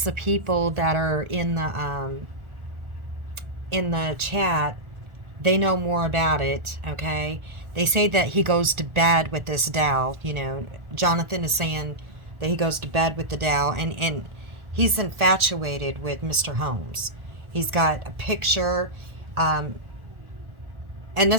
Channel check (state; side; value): late; left; 1.4 ms